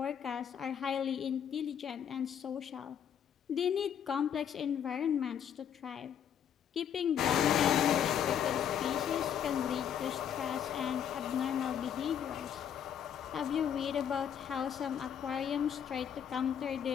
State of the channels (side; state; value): right; quieter; 8.8 dB